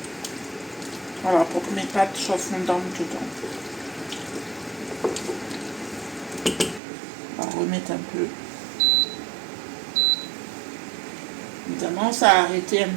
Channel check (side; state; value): left; drops out; at 6.8 s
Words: Voilà, pour que mes pâtes soient fondantes dedans. On va remettre un peu. Évidemment, ça a arrêté un